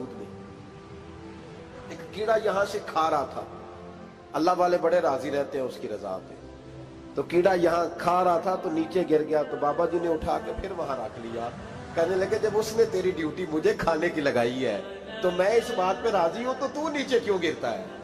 میں۔ ایک کیڑا یہاں سے کھا رہا تھا، اللہ والے بڑے راضی رہتے ہیں اس کی رضا پہ، تو کیڑا یہاں کھا رہا تھا تو نیچے گر گیا، تو بابا جی نے اٹھا کے پھر وہاں رکھ لیا، کہنے لگے جب اس نے تیری ڈیوٹی مجھے کھانے کی لگائی ہے تو میں اس بات پہ راضی ہوں، تو نیچے کیوں گرتا ہے؟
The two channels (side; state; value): both; identical; correlation 1.00